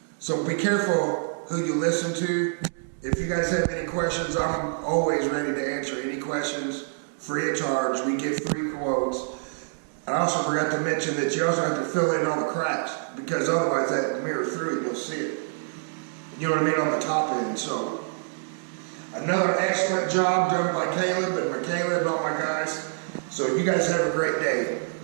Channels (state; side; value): silent; left; digital silence